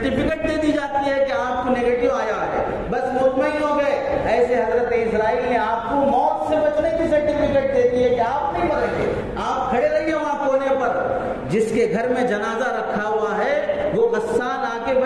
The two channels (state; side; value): identical; both; correlation 1.00